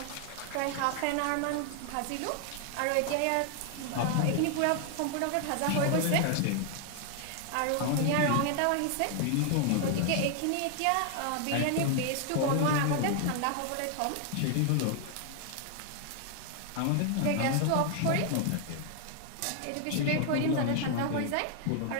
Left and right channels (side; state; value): both; different; correlation 0.00